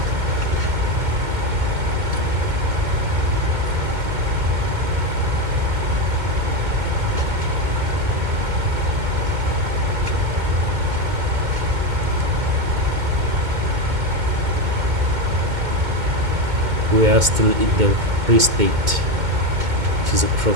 We are still in the Free State, which is a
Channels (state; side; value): late; left; 2.2 ms